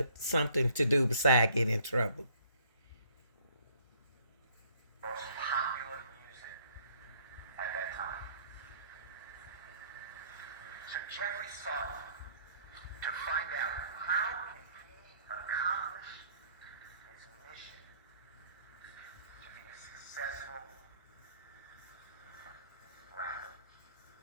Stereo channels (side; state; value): both; inverted; correlation -0.61